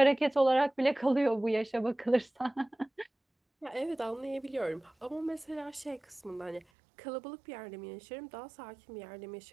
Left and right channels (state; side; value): drops out; left; at 6.7 s